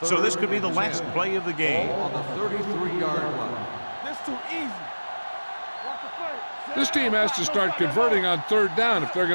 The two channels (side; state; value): both; inverted; correlation -1.00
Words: So this could be the last play of the game. Ball on the 33-yard line. This too easy. Watch the play. This team has to start converting on 3rd down if they're